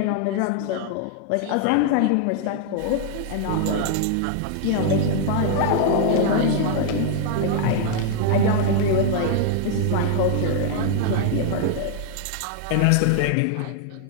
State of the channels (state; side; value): different; both; correlation 0.00